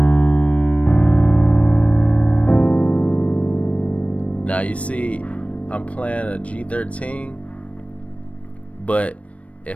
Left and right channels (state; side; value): late; right; 0.064 ms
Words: Now you see I'm playing a G13, but